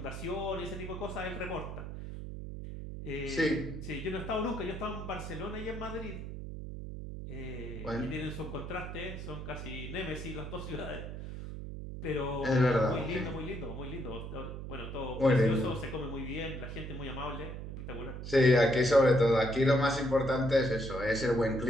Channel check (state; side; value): noise; right; hum, 8 dB below the sound